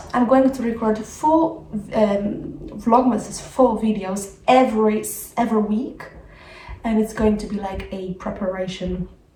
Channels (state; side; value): identical; both; correlation 1.00